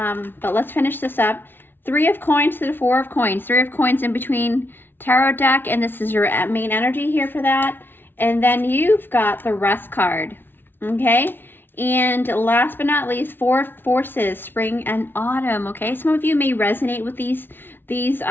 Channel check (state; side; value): late; right; 0.10 ms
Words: let's finish this up. 3 of coins to the 4 of coins. 3 of coins in between tarot deck, and this is your main energy here for that. And then you've got the Rest card, okay? And last but not least, 4 forces, spring and autumn, okay? Some of you may resonate with these